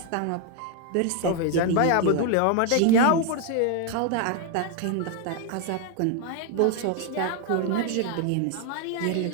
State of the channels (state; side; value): different; both; correlation 0.01